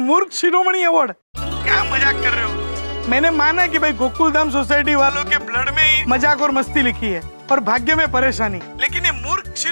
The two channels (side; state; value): both; inverted; correlation -1.00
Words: शिरोमणि अवार्ड? क्या मजाक कर रहे हो? मैंने माना कि भाई गोकुलधाम सोसाइटी वालों के ब्लड में ही मजाक और मस्ती लिखी है और भाग्य में परेशानी, लेकिन ये मूर्ख